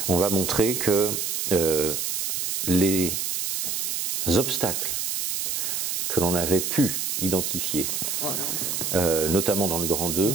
on va montrer que les obstacles que l'on avait pu identifier, notamment dans le grand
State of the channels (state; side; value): noise; right; hiss, 1 dB below the sound